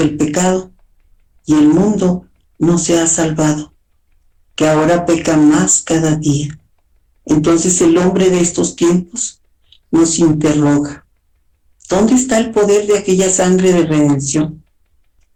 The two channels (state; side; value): identical; both; correlation 1.00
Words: pecado, y el mundo no se ha salvado, que ahora peca más cada día. Entonces el hombre de estos tiempos nos interroga: ¿dónde está el poder de aquella sangre de redención?